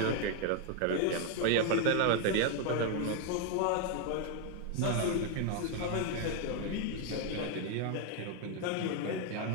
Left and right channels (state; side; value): different; both; correlation 0.01